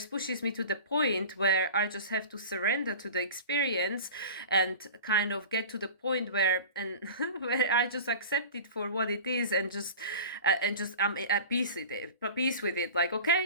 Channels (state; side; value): inverted; both; correlation -0.36